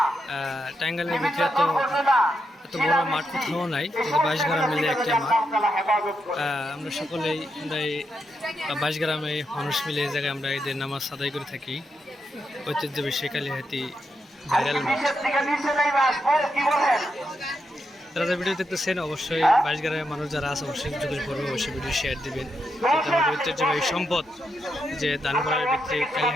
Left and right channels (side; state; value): both; normal; correlation 0.83